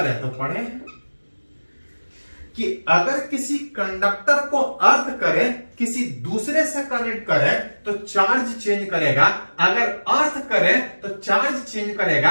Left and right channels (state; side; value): inverted; both; correlation -1.00